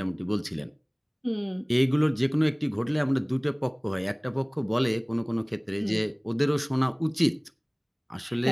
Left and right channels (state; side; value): identical; both; correlation 1.00